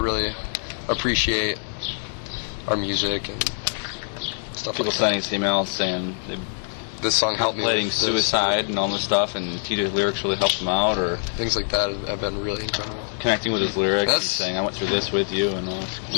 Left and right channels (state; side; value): silent; right; digital silence